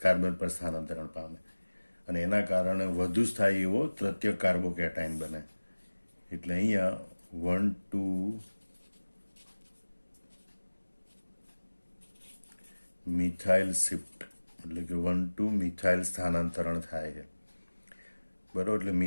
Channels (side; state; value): both; inverted; correlation -1.00